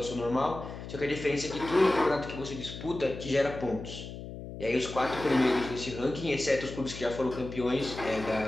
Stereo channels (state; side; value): noise; left; hum, 10 dB below the sound